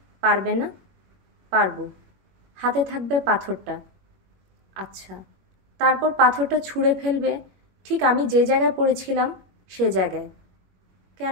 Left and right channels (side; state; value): left; late; 21 ms